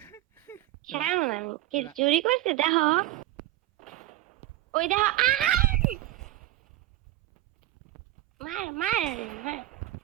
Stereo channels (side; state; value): left; quieter; 15.6 dB